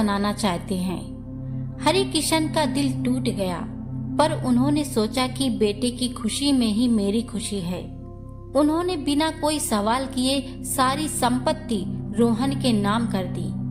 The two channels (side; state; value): both; identical; correlation 1.00